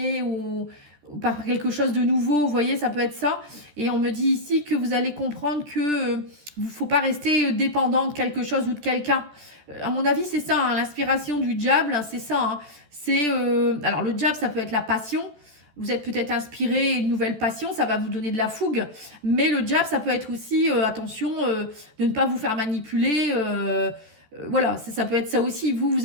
ou par quelque chose de nouveau, vous voyez, ça peut être ça. Et on me dit ici que vous allez comprendre que ne faut pas rester dépendant de quelque chose ou de quelqu'un. À mon avis, c'est ça, hein, l'inspiration du diable, c'est ça, hein. Alors le diable, ça peut être la passion. Vous êtes peut-être inspiré, une nouvelle passion, ça va vous donner de la fougue. Mais le diable, ça peut être aussi, attention, de ne pas vous faire manipuler. Voilà, ça peut être ça aussi.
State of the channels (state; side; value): late; left; 14 ms